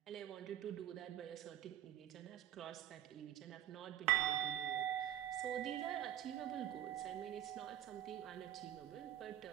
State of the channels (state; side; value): quieter; left; 12.1 dB